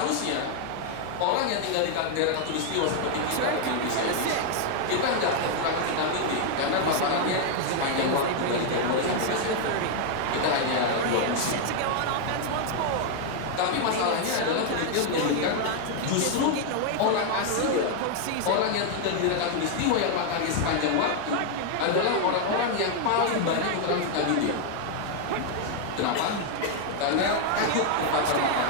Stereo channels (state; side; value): different; both; correlation 0.00